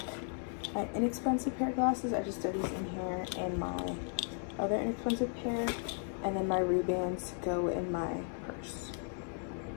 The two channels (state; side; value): silent; right; 54 dB below the other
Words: my inexpensive pair of glasses. I just throw these in here, and my other inexpensive pair. And then my Ray-Bans go in my purse.